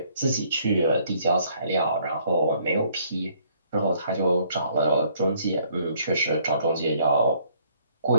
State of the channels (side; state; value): both; inverted; correlation -0.64